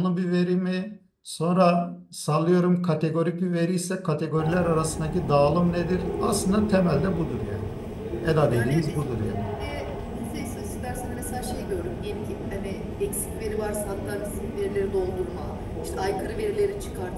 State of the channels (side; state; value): both; identical; correlation 1.00